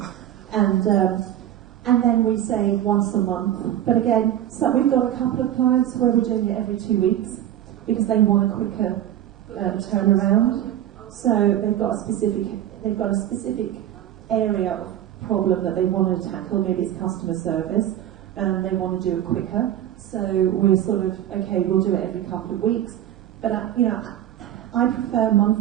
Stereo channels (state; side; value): quieter; left; 11.8 dB